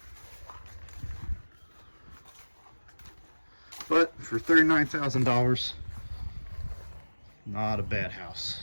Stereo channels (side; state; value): both; inverted; correlation -1.00